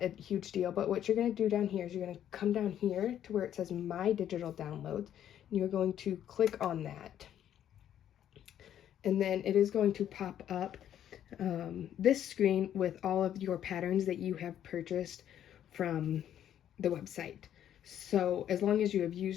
a huge deal, but what you're going to do down here is you're going to come down here to where it says My Digital Downloads, and you're going to click on that. And then it is going to pop up this screen with all of your patterns that you have purchased from the website. So as long as you have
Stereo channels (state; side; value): quieter; right; 10.5 dB